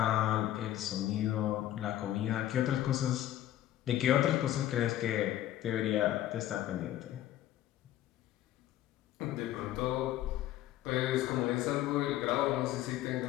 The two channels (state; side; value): quieter; right; 13.2 dB